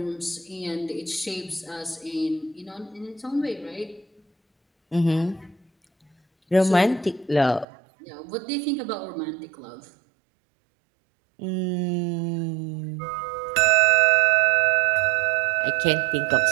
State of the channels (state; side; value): drops out; left; at 7.7 s